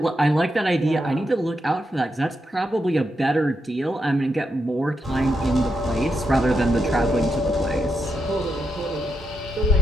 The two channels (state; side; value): normal; both; correlation 0.83